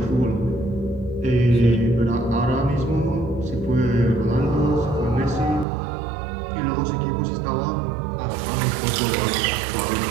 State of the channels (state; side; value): drops out; left; at 5.7 s